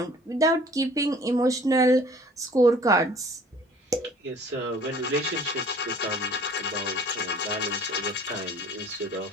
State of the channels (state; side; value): normal; both; correlation 0.51